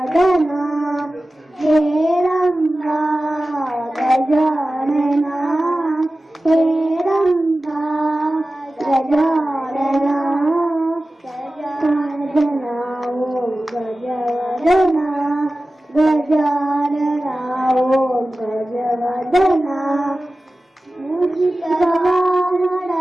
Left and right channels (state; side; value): normal; both; correlation 0.95